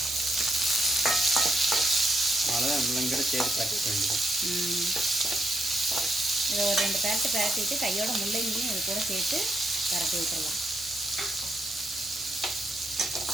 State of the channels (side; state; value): both; normal; correlation 0.78